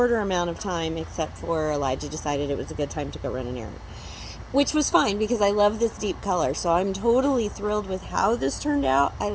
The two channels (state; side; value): identical; both; correlation 1.00